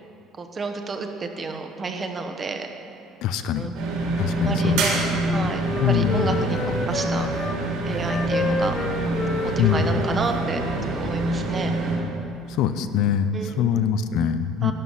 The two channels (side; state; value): both; normal; correlation 0.52